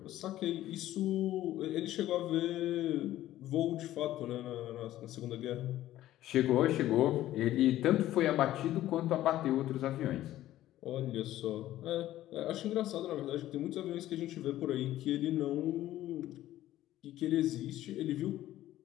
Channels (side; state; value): right; quieter; 14.1 dB